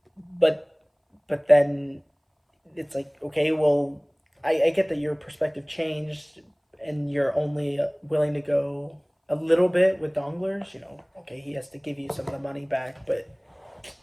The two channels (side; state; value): both; identical; correlation 1.00